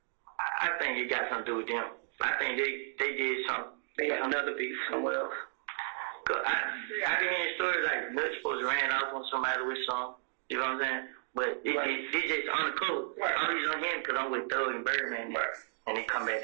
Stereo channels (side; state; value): left; silent; 56 dB below the other